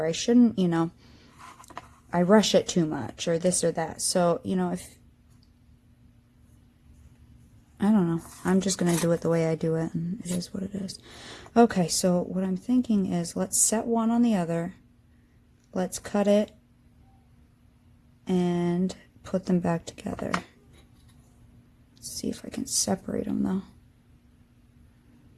I shouldn't, you know, I rush it too much, or this or that. So, you know, I don't know. I'm just going to do it the way I do it, and it is what it is. Okay, so what I'm thinking is, let's set one on the other. Let's cut it and put them back together. Let's see if I can separate them, though.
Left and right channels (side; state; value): both; identical; correlation 1.00